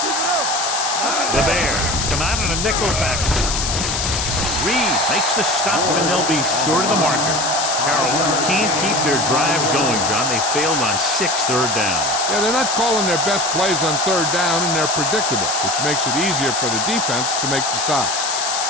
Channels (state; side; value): noise; left; hiss, 1 dB below the sound